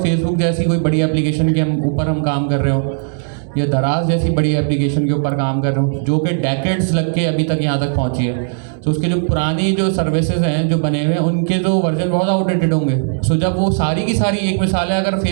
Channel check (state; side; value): silent; left; digital silence